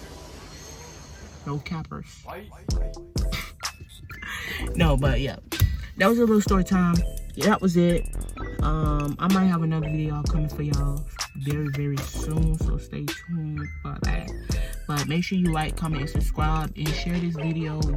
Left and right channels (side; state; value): both; identical; correlation 1.00